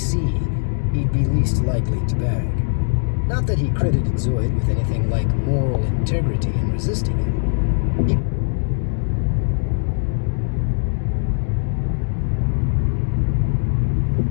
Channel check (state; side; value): silent; right; digital silence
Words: he'd be least likely to bag. Not that he credited Zoid with anything like moral integrity in resisting him.